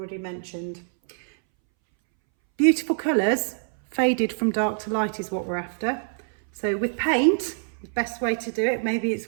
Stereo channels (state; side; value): silent; left; 62 dB below the other